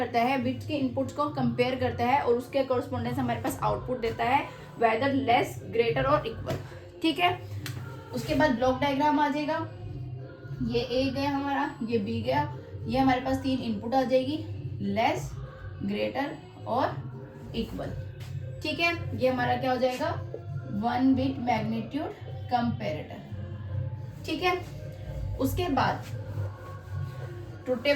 है, बिट्स के इनपुट्स को कंपेयर करता है और उसके कॉरस्पॉन्डेंस हमारे पास आउटपुट देता है, वेदर लेस ग्रेटर और इक्वल। ठीक है, उसके बाद ब्लॉक डायग्राम आ जाएगा। ये ए गया हमारा, ये बी गया, ये हमारे पास 3 इनपुट आ जाएगी, लेस ग्रेटर और इक्वल। ठीक है, ये हमारा क्या हो जाएगा 1 बिट मैग्नीट्यूड कंपैरेटर। ठीक है, उसके बाद ट्रुथ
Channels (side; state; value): both; identical; correlation 1.00